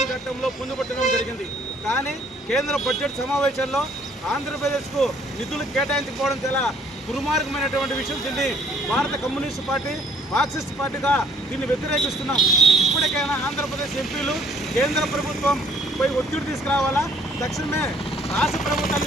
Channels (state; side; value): normal; both; correlation 0.61